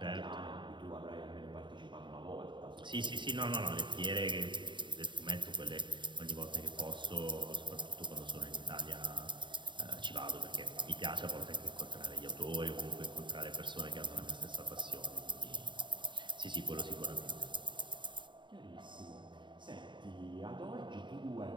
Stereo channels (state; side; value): late; left; 0.23 ms